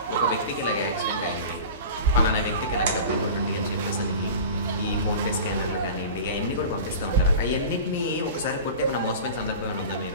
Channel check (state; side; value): inverted; both; correlation -0.35